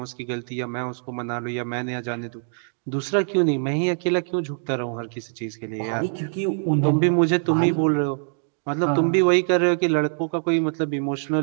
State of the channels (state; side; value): silent; left; digital silence